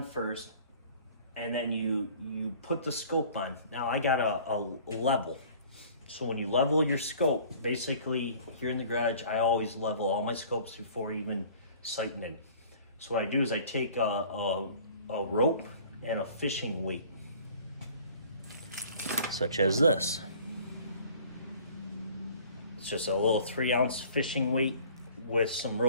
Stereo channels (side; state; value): both; inverted; correlation -0.50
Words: first, and then you put the scope on. Now I got a level. So when you level your scope, basically here in the garage, I always level all my scopes before even sighting in. So what I do is I take a rope and a fishing weight, such as this. It's just a little 3-ounce fishing weight with some